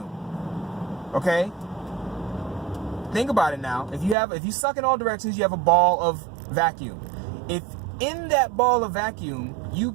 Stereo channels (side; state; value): left; drops out; at 4.2 s